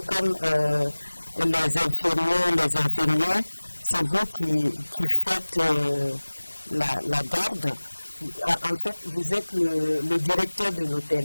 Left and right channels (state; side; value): inverted; both; correlation -1.00